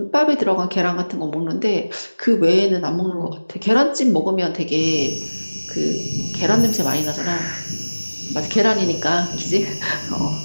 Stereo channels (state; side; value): inverted; both; correlation -1.00